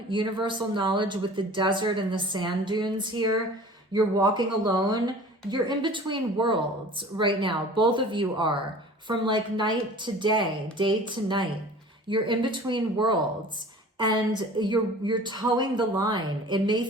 Universal knowledge with the desert and the sand dunes here. You're walking alone. You're in between worlds right now. Both of you are. From like night to day to night. You're in between worlds. And you're towing the line. It may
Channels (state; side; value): normal; both; correlation 0.43